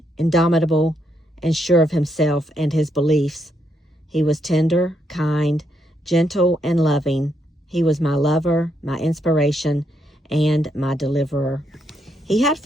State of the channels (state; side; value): normal; both; correlation 0.78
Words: indomitable, and sure of himself and his beliefs. He was tender, kind, gentle, and loving. He was my lover, my inspiration, and my deliverer. He had